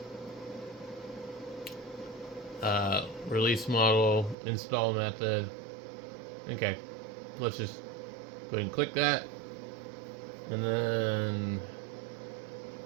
release model, install method. Okay, let's just go ahead and click that. And then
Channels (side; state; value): left; drops out; at 4.4 s